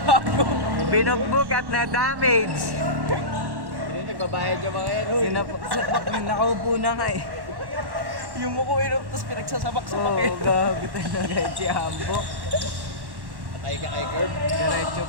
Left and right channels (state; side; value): late; left; 1.1 ms